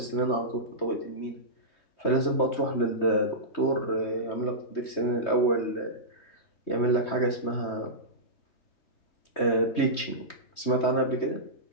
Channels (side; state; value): right; late; 3.2 ms